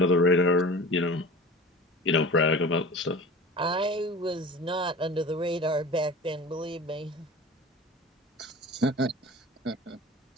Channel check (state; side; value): normal; both; correlation 0.37